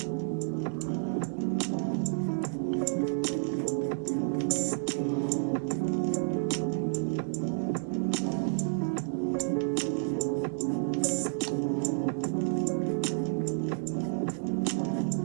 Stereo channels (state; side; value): silent; left; digital silence